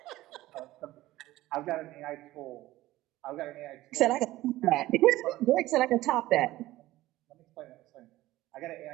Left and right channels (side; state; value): left; quieter; 16.6 dB